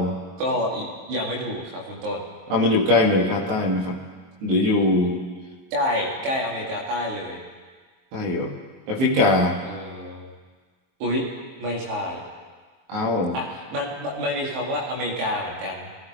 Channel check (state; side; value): late; left; 23 ms